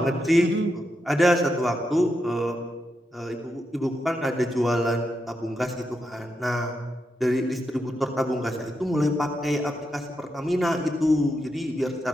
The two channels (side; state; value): both; normal; correlation 0.84